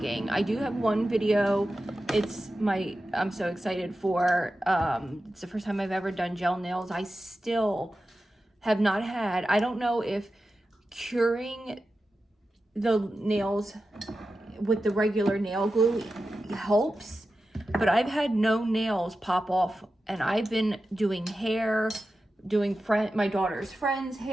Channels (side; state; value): both; normal; correlation 0.92